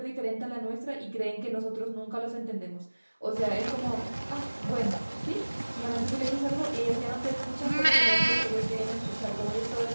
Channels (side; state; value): both; inverted; correlation -1.00